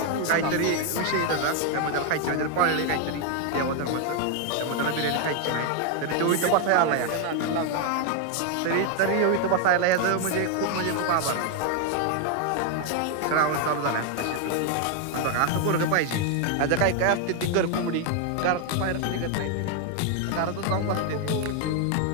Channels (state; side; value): different; both; correlation 0.01